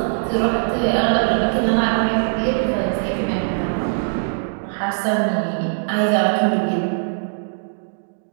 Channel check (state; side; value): silent; left; digital silence